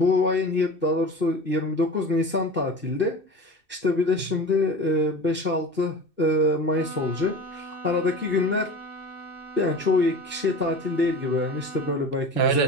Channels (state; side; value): late; left; 2.6 ms